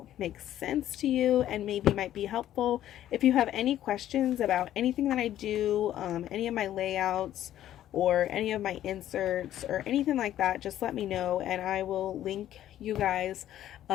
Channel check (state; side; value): quieter; right; 12.2 dB